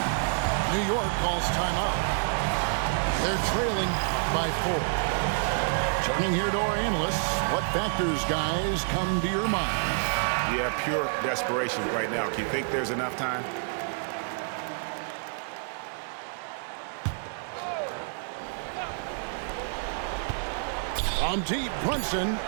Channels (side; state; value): left; silent; digital silence